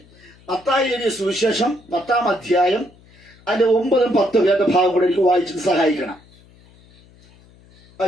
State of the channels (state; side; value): noise; left; hum, 28 dB below the sound